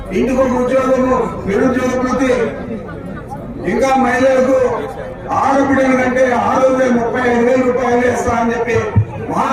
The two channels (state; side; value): identical; both; correlation 1.00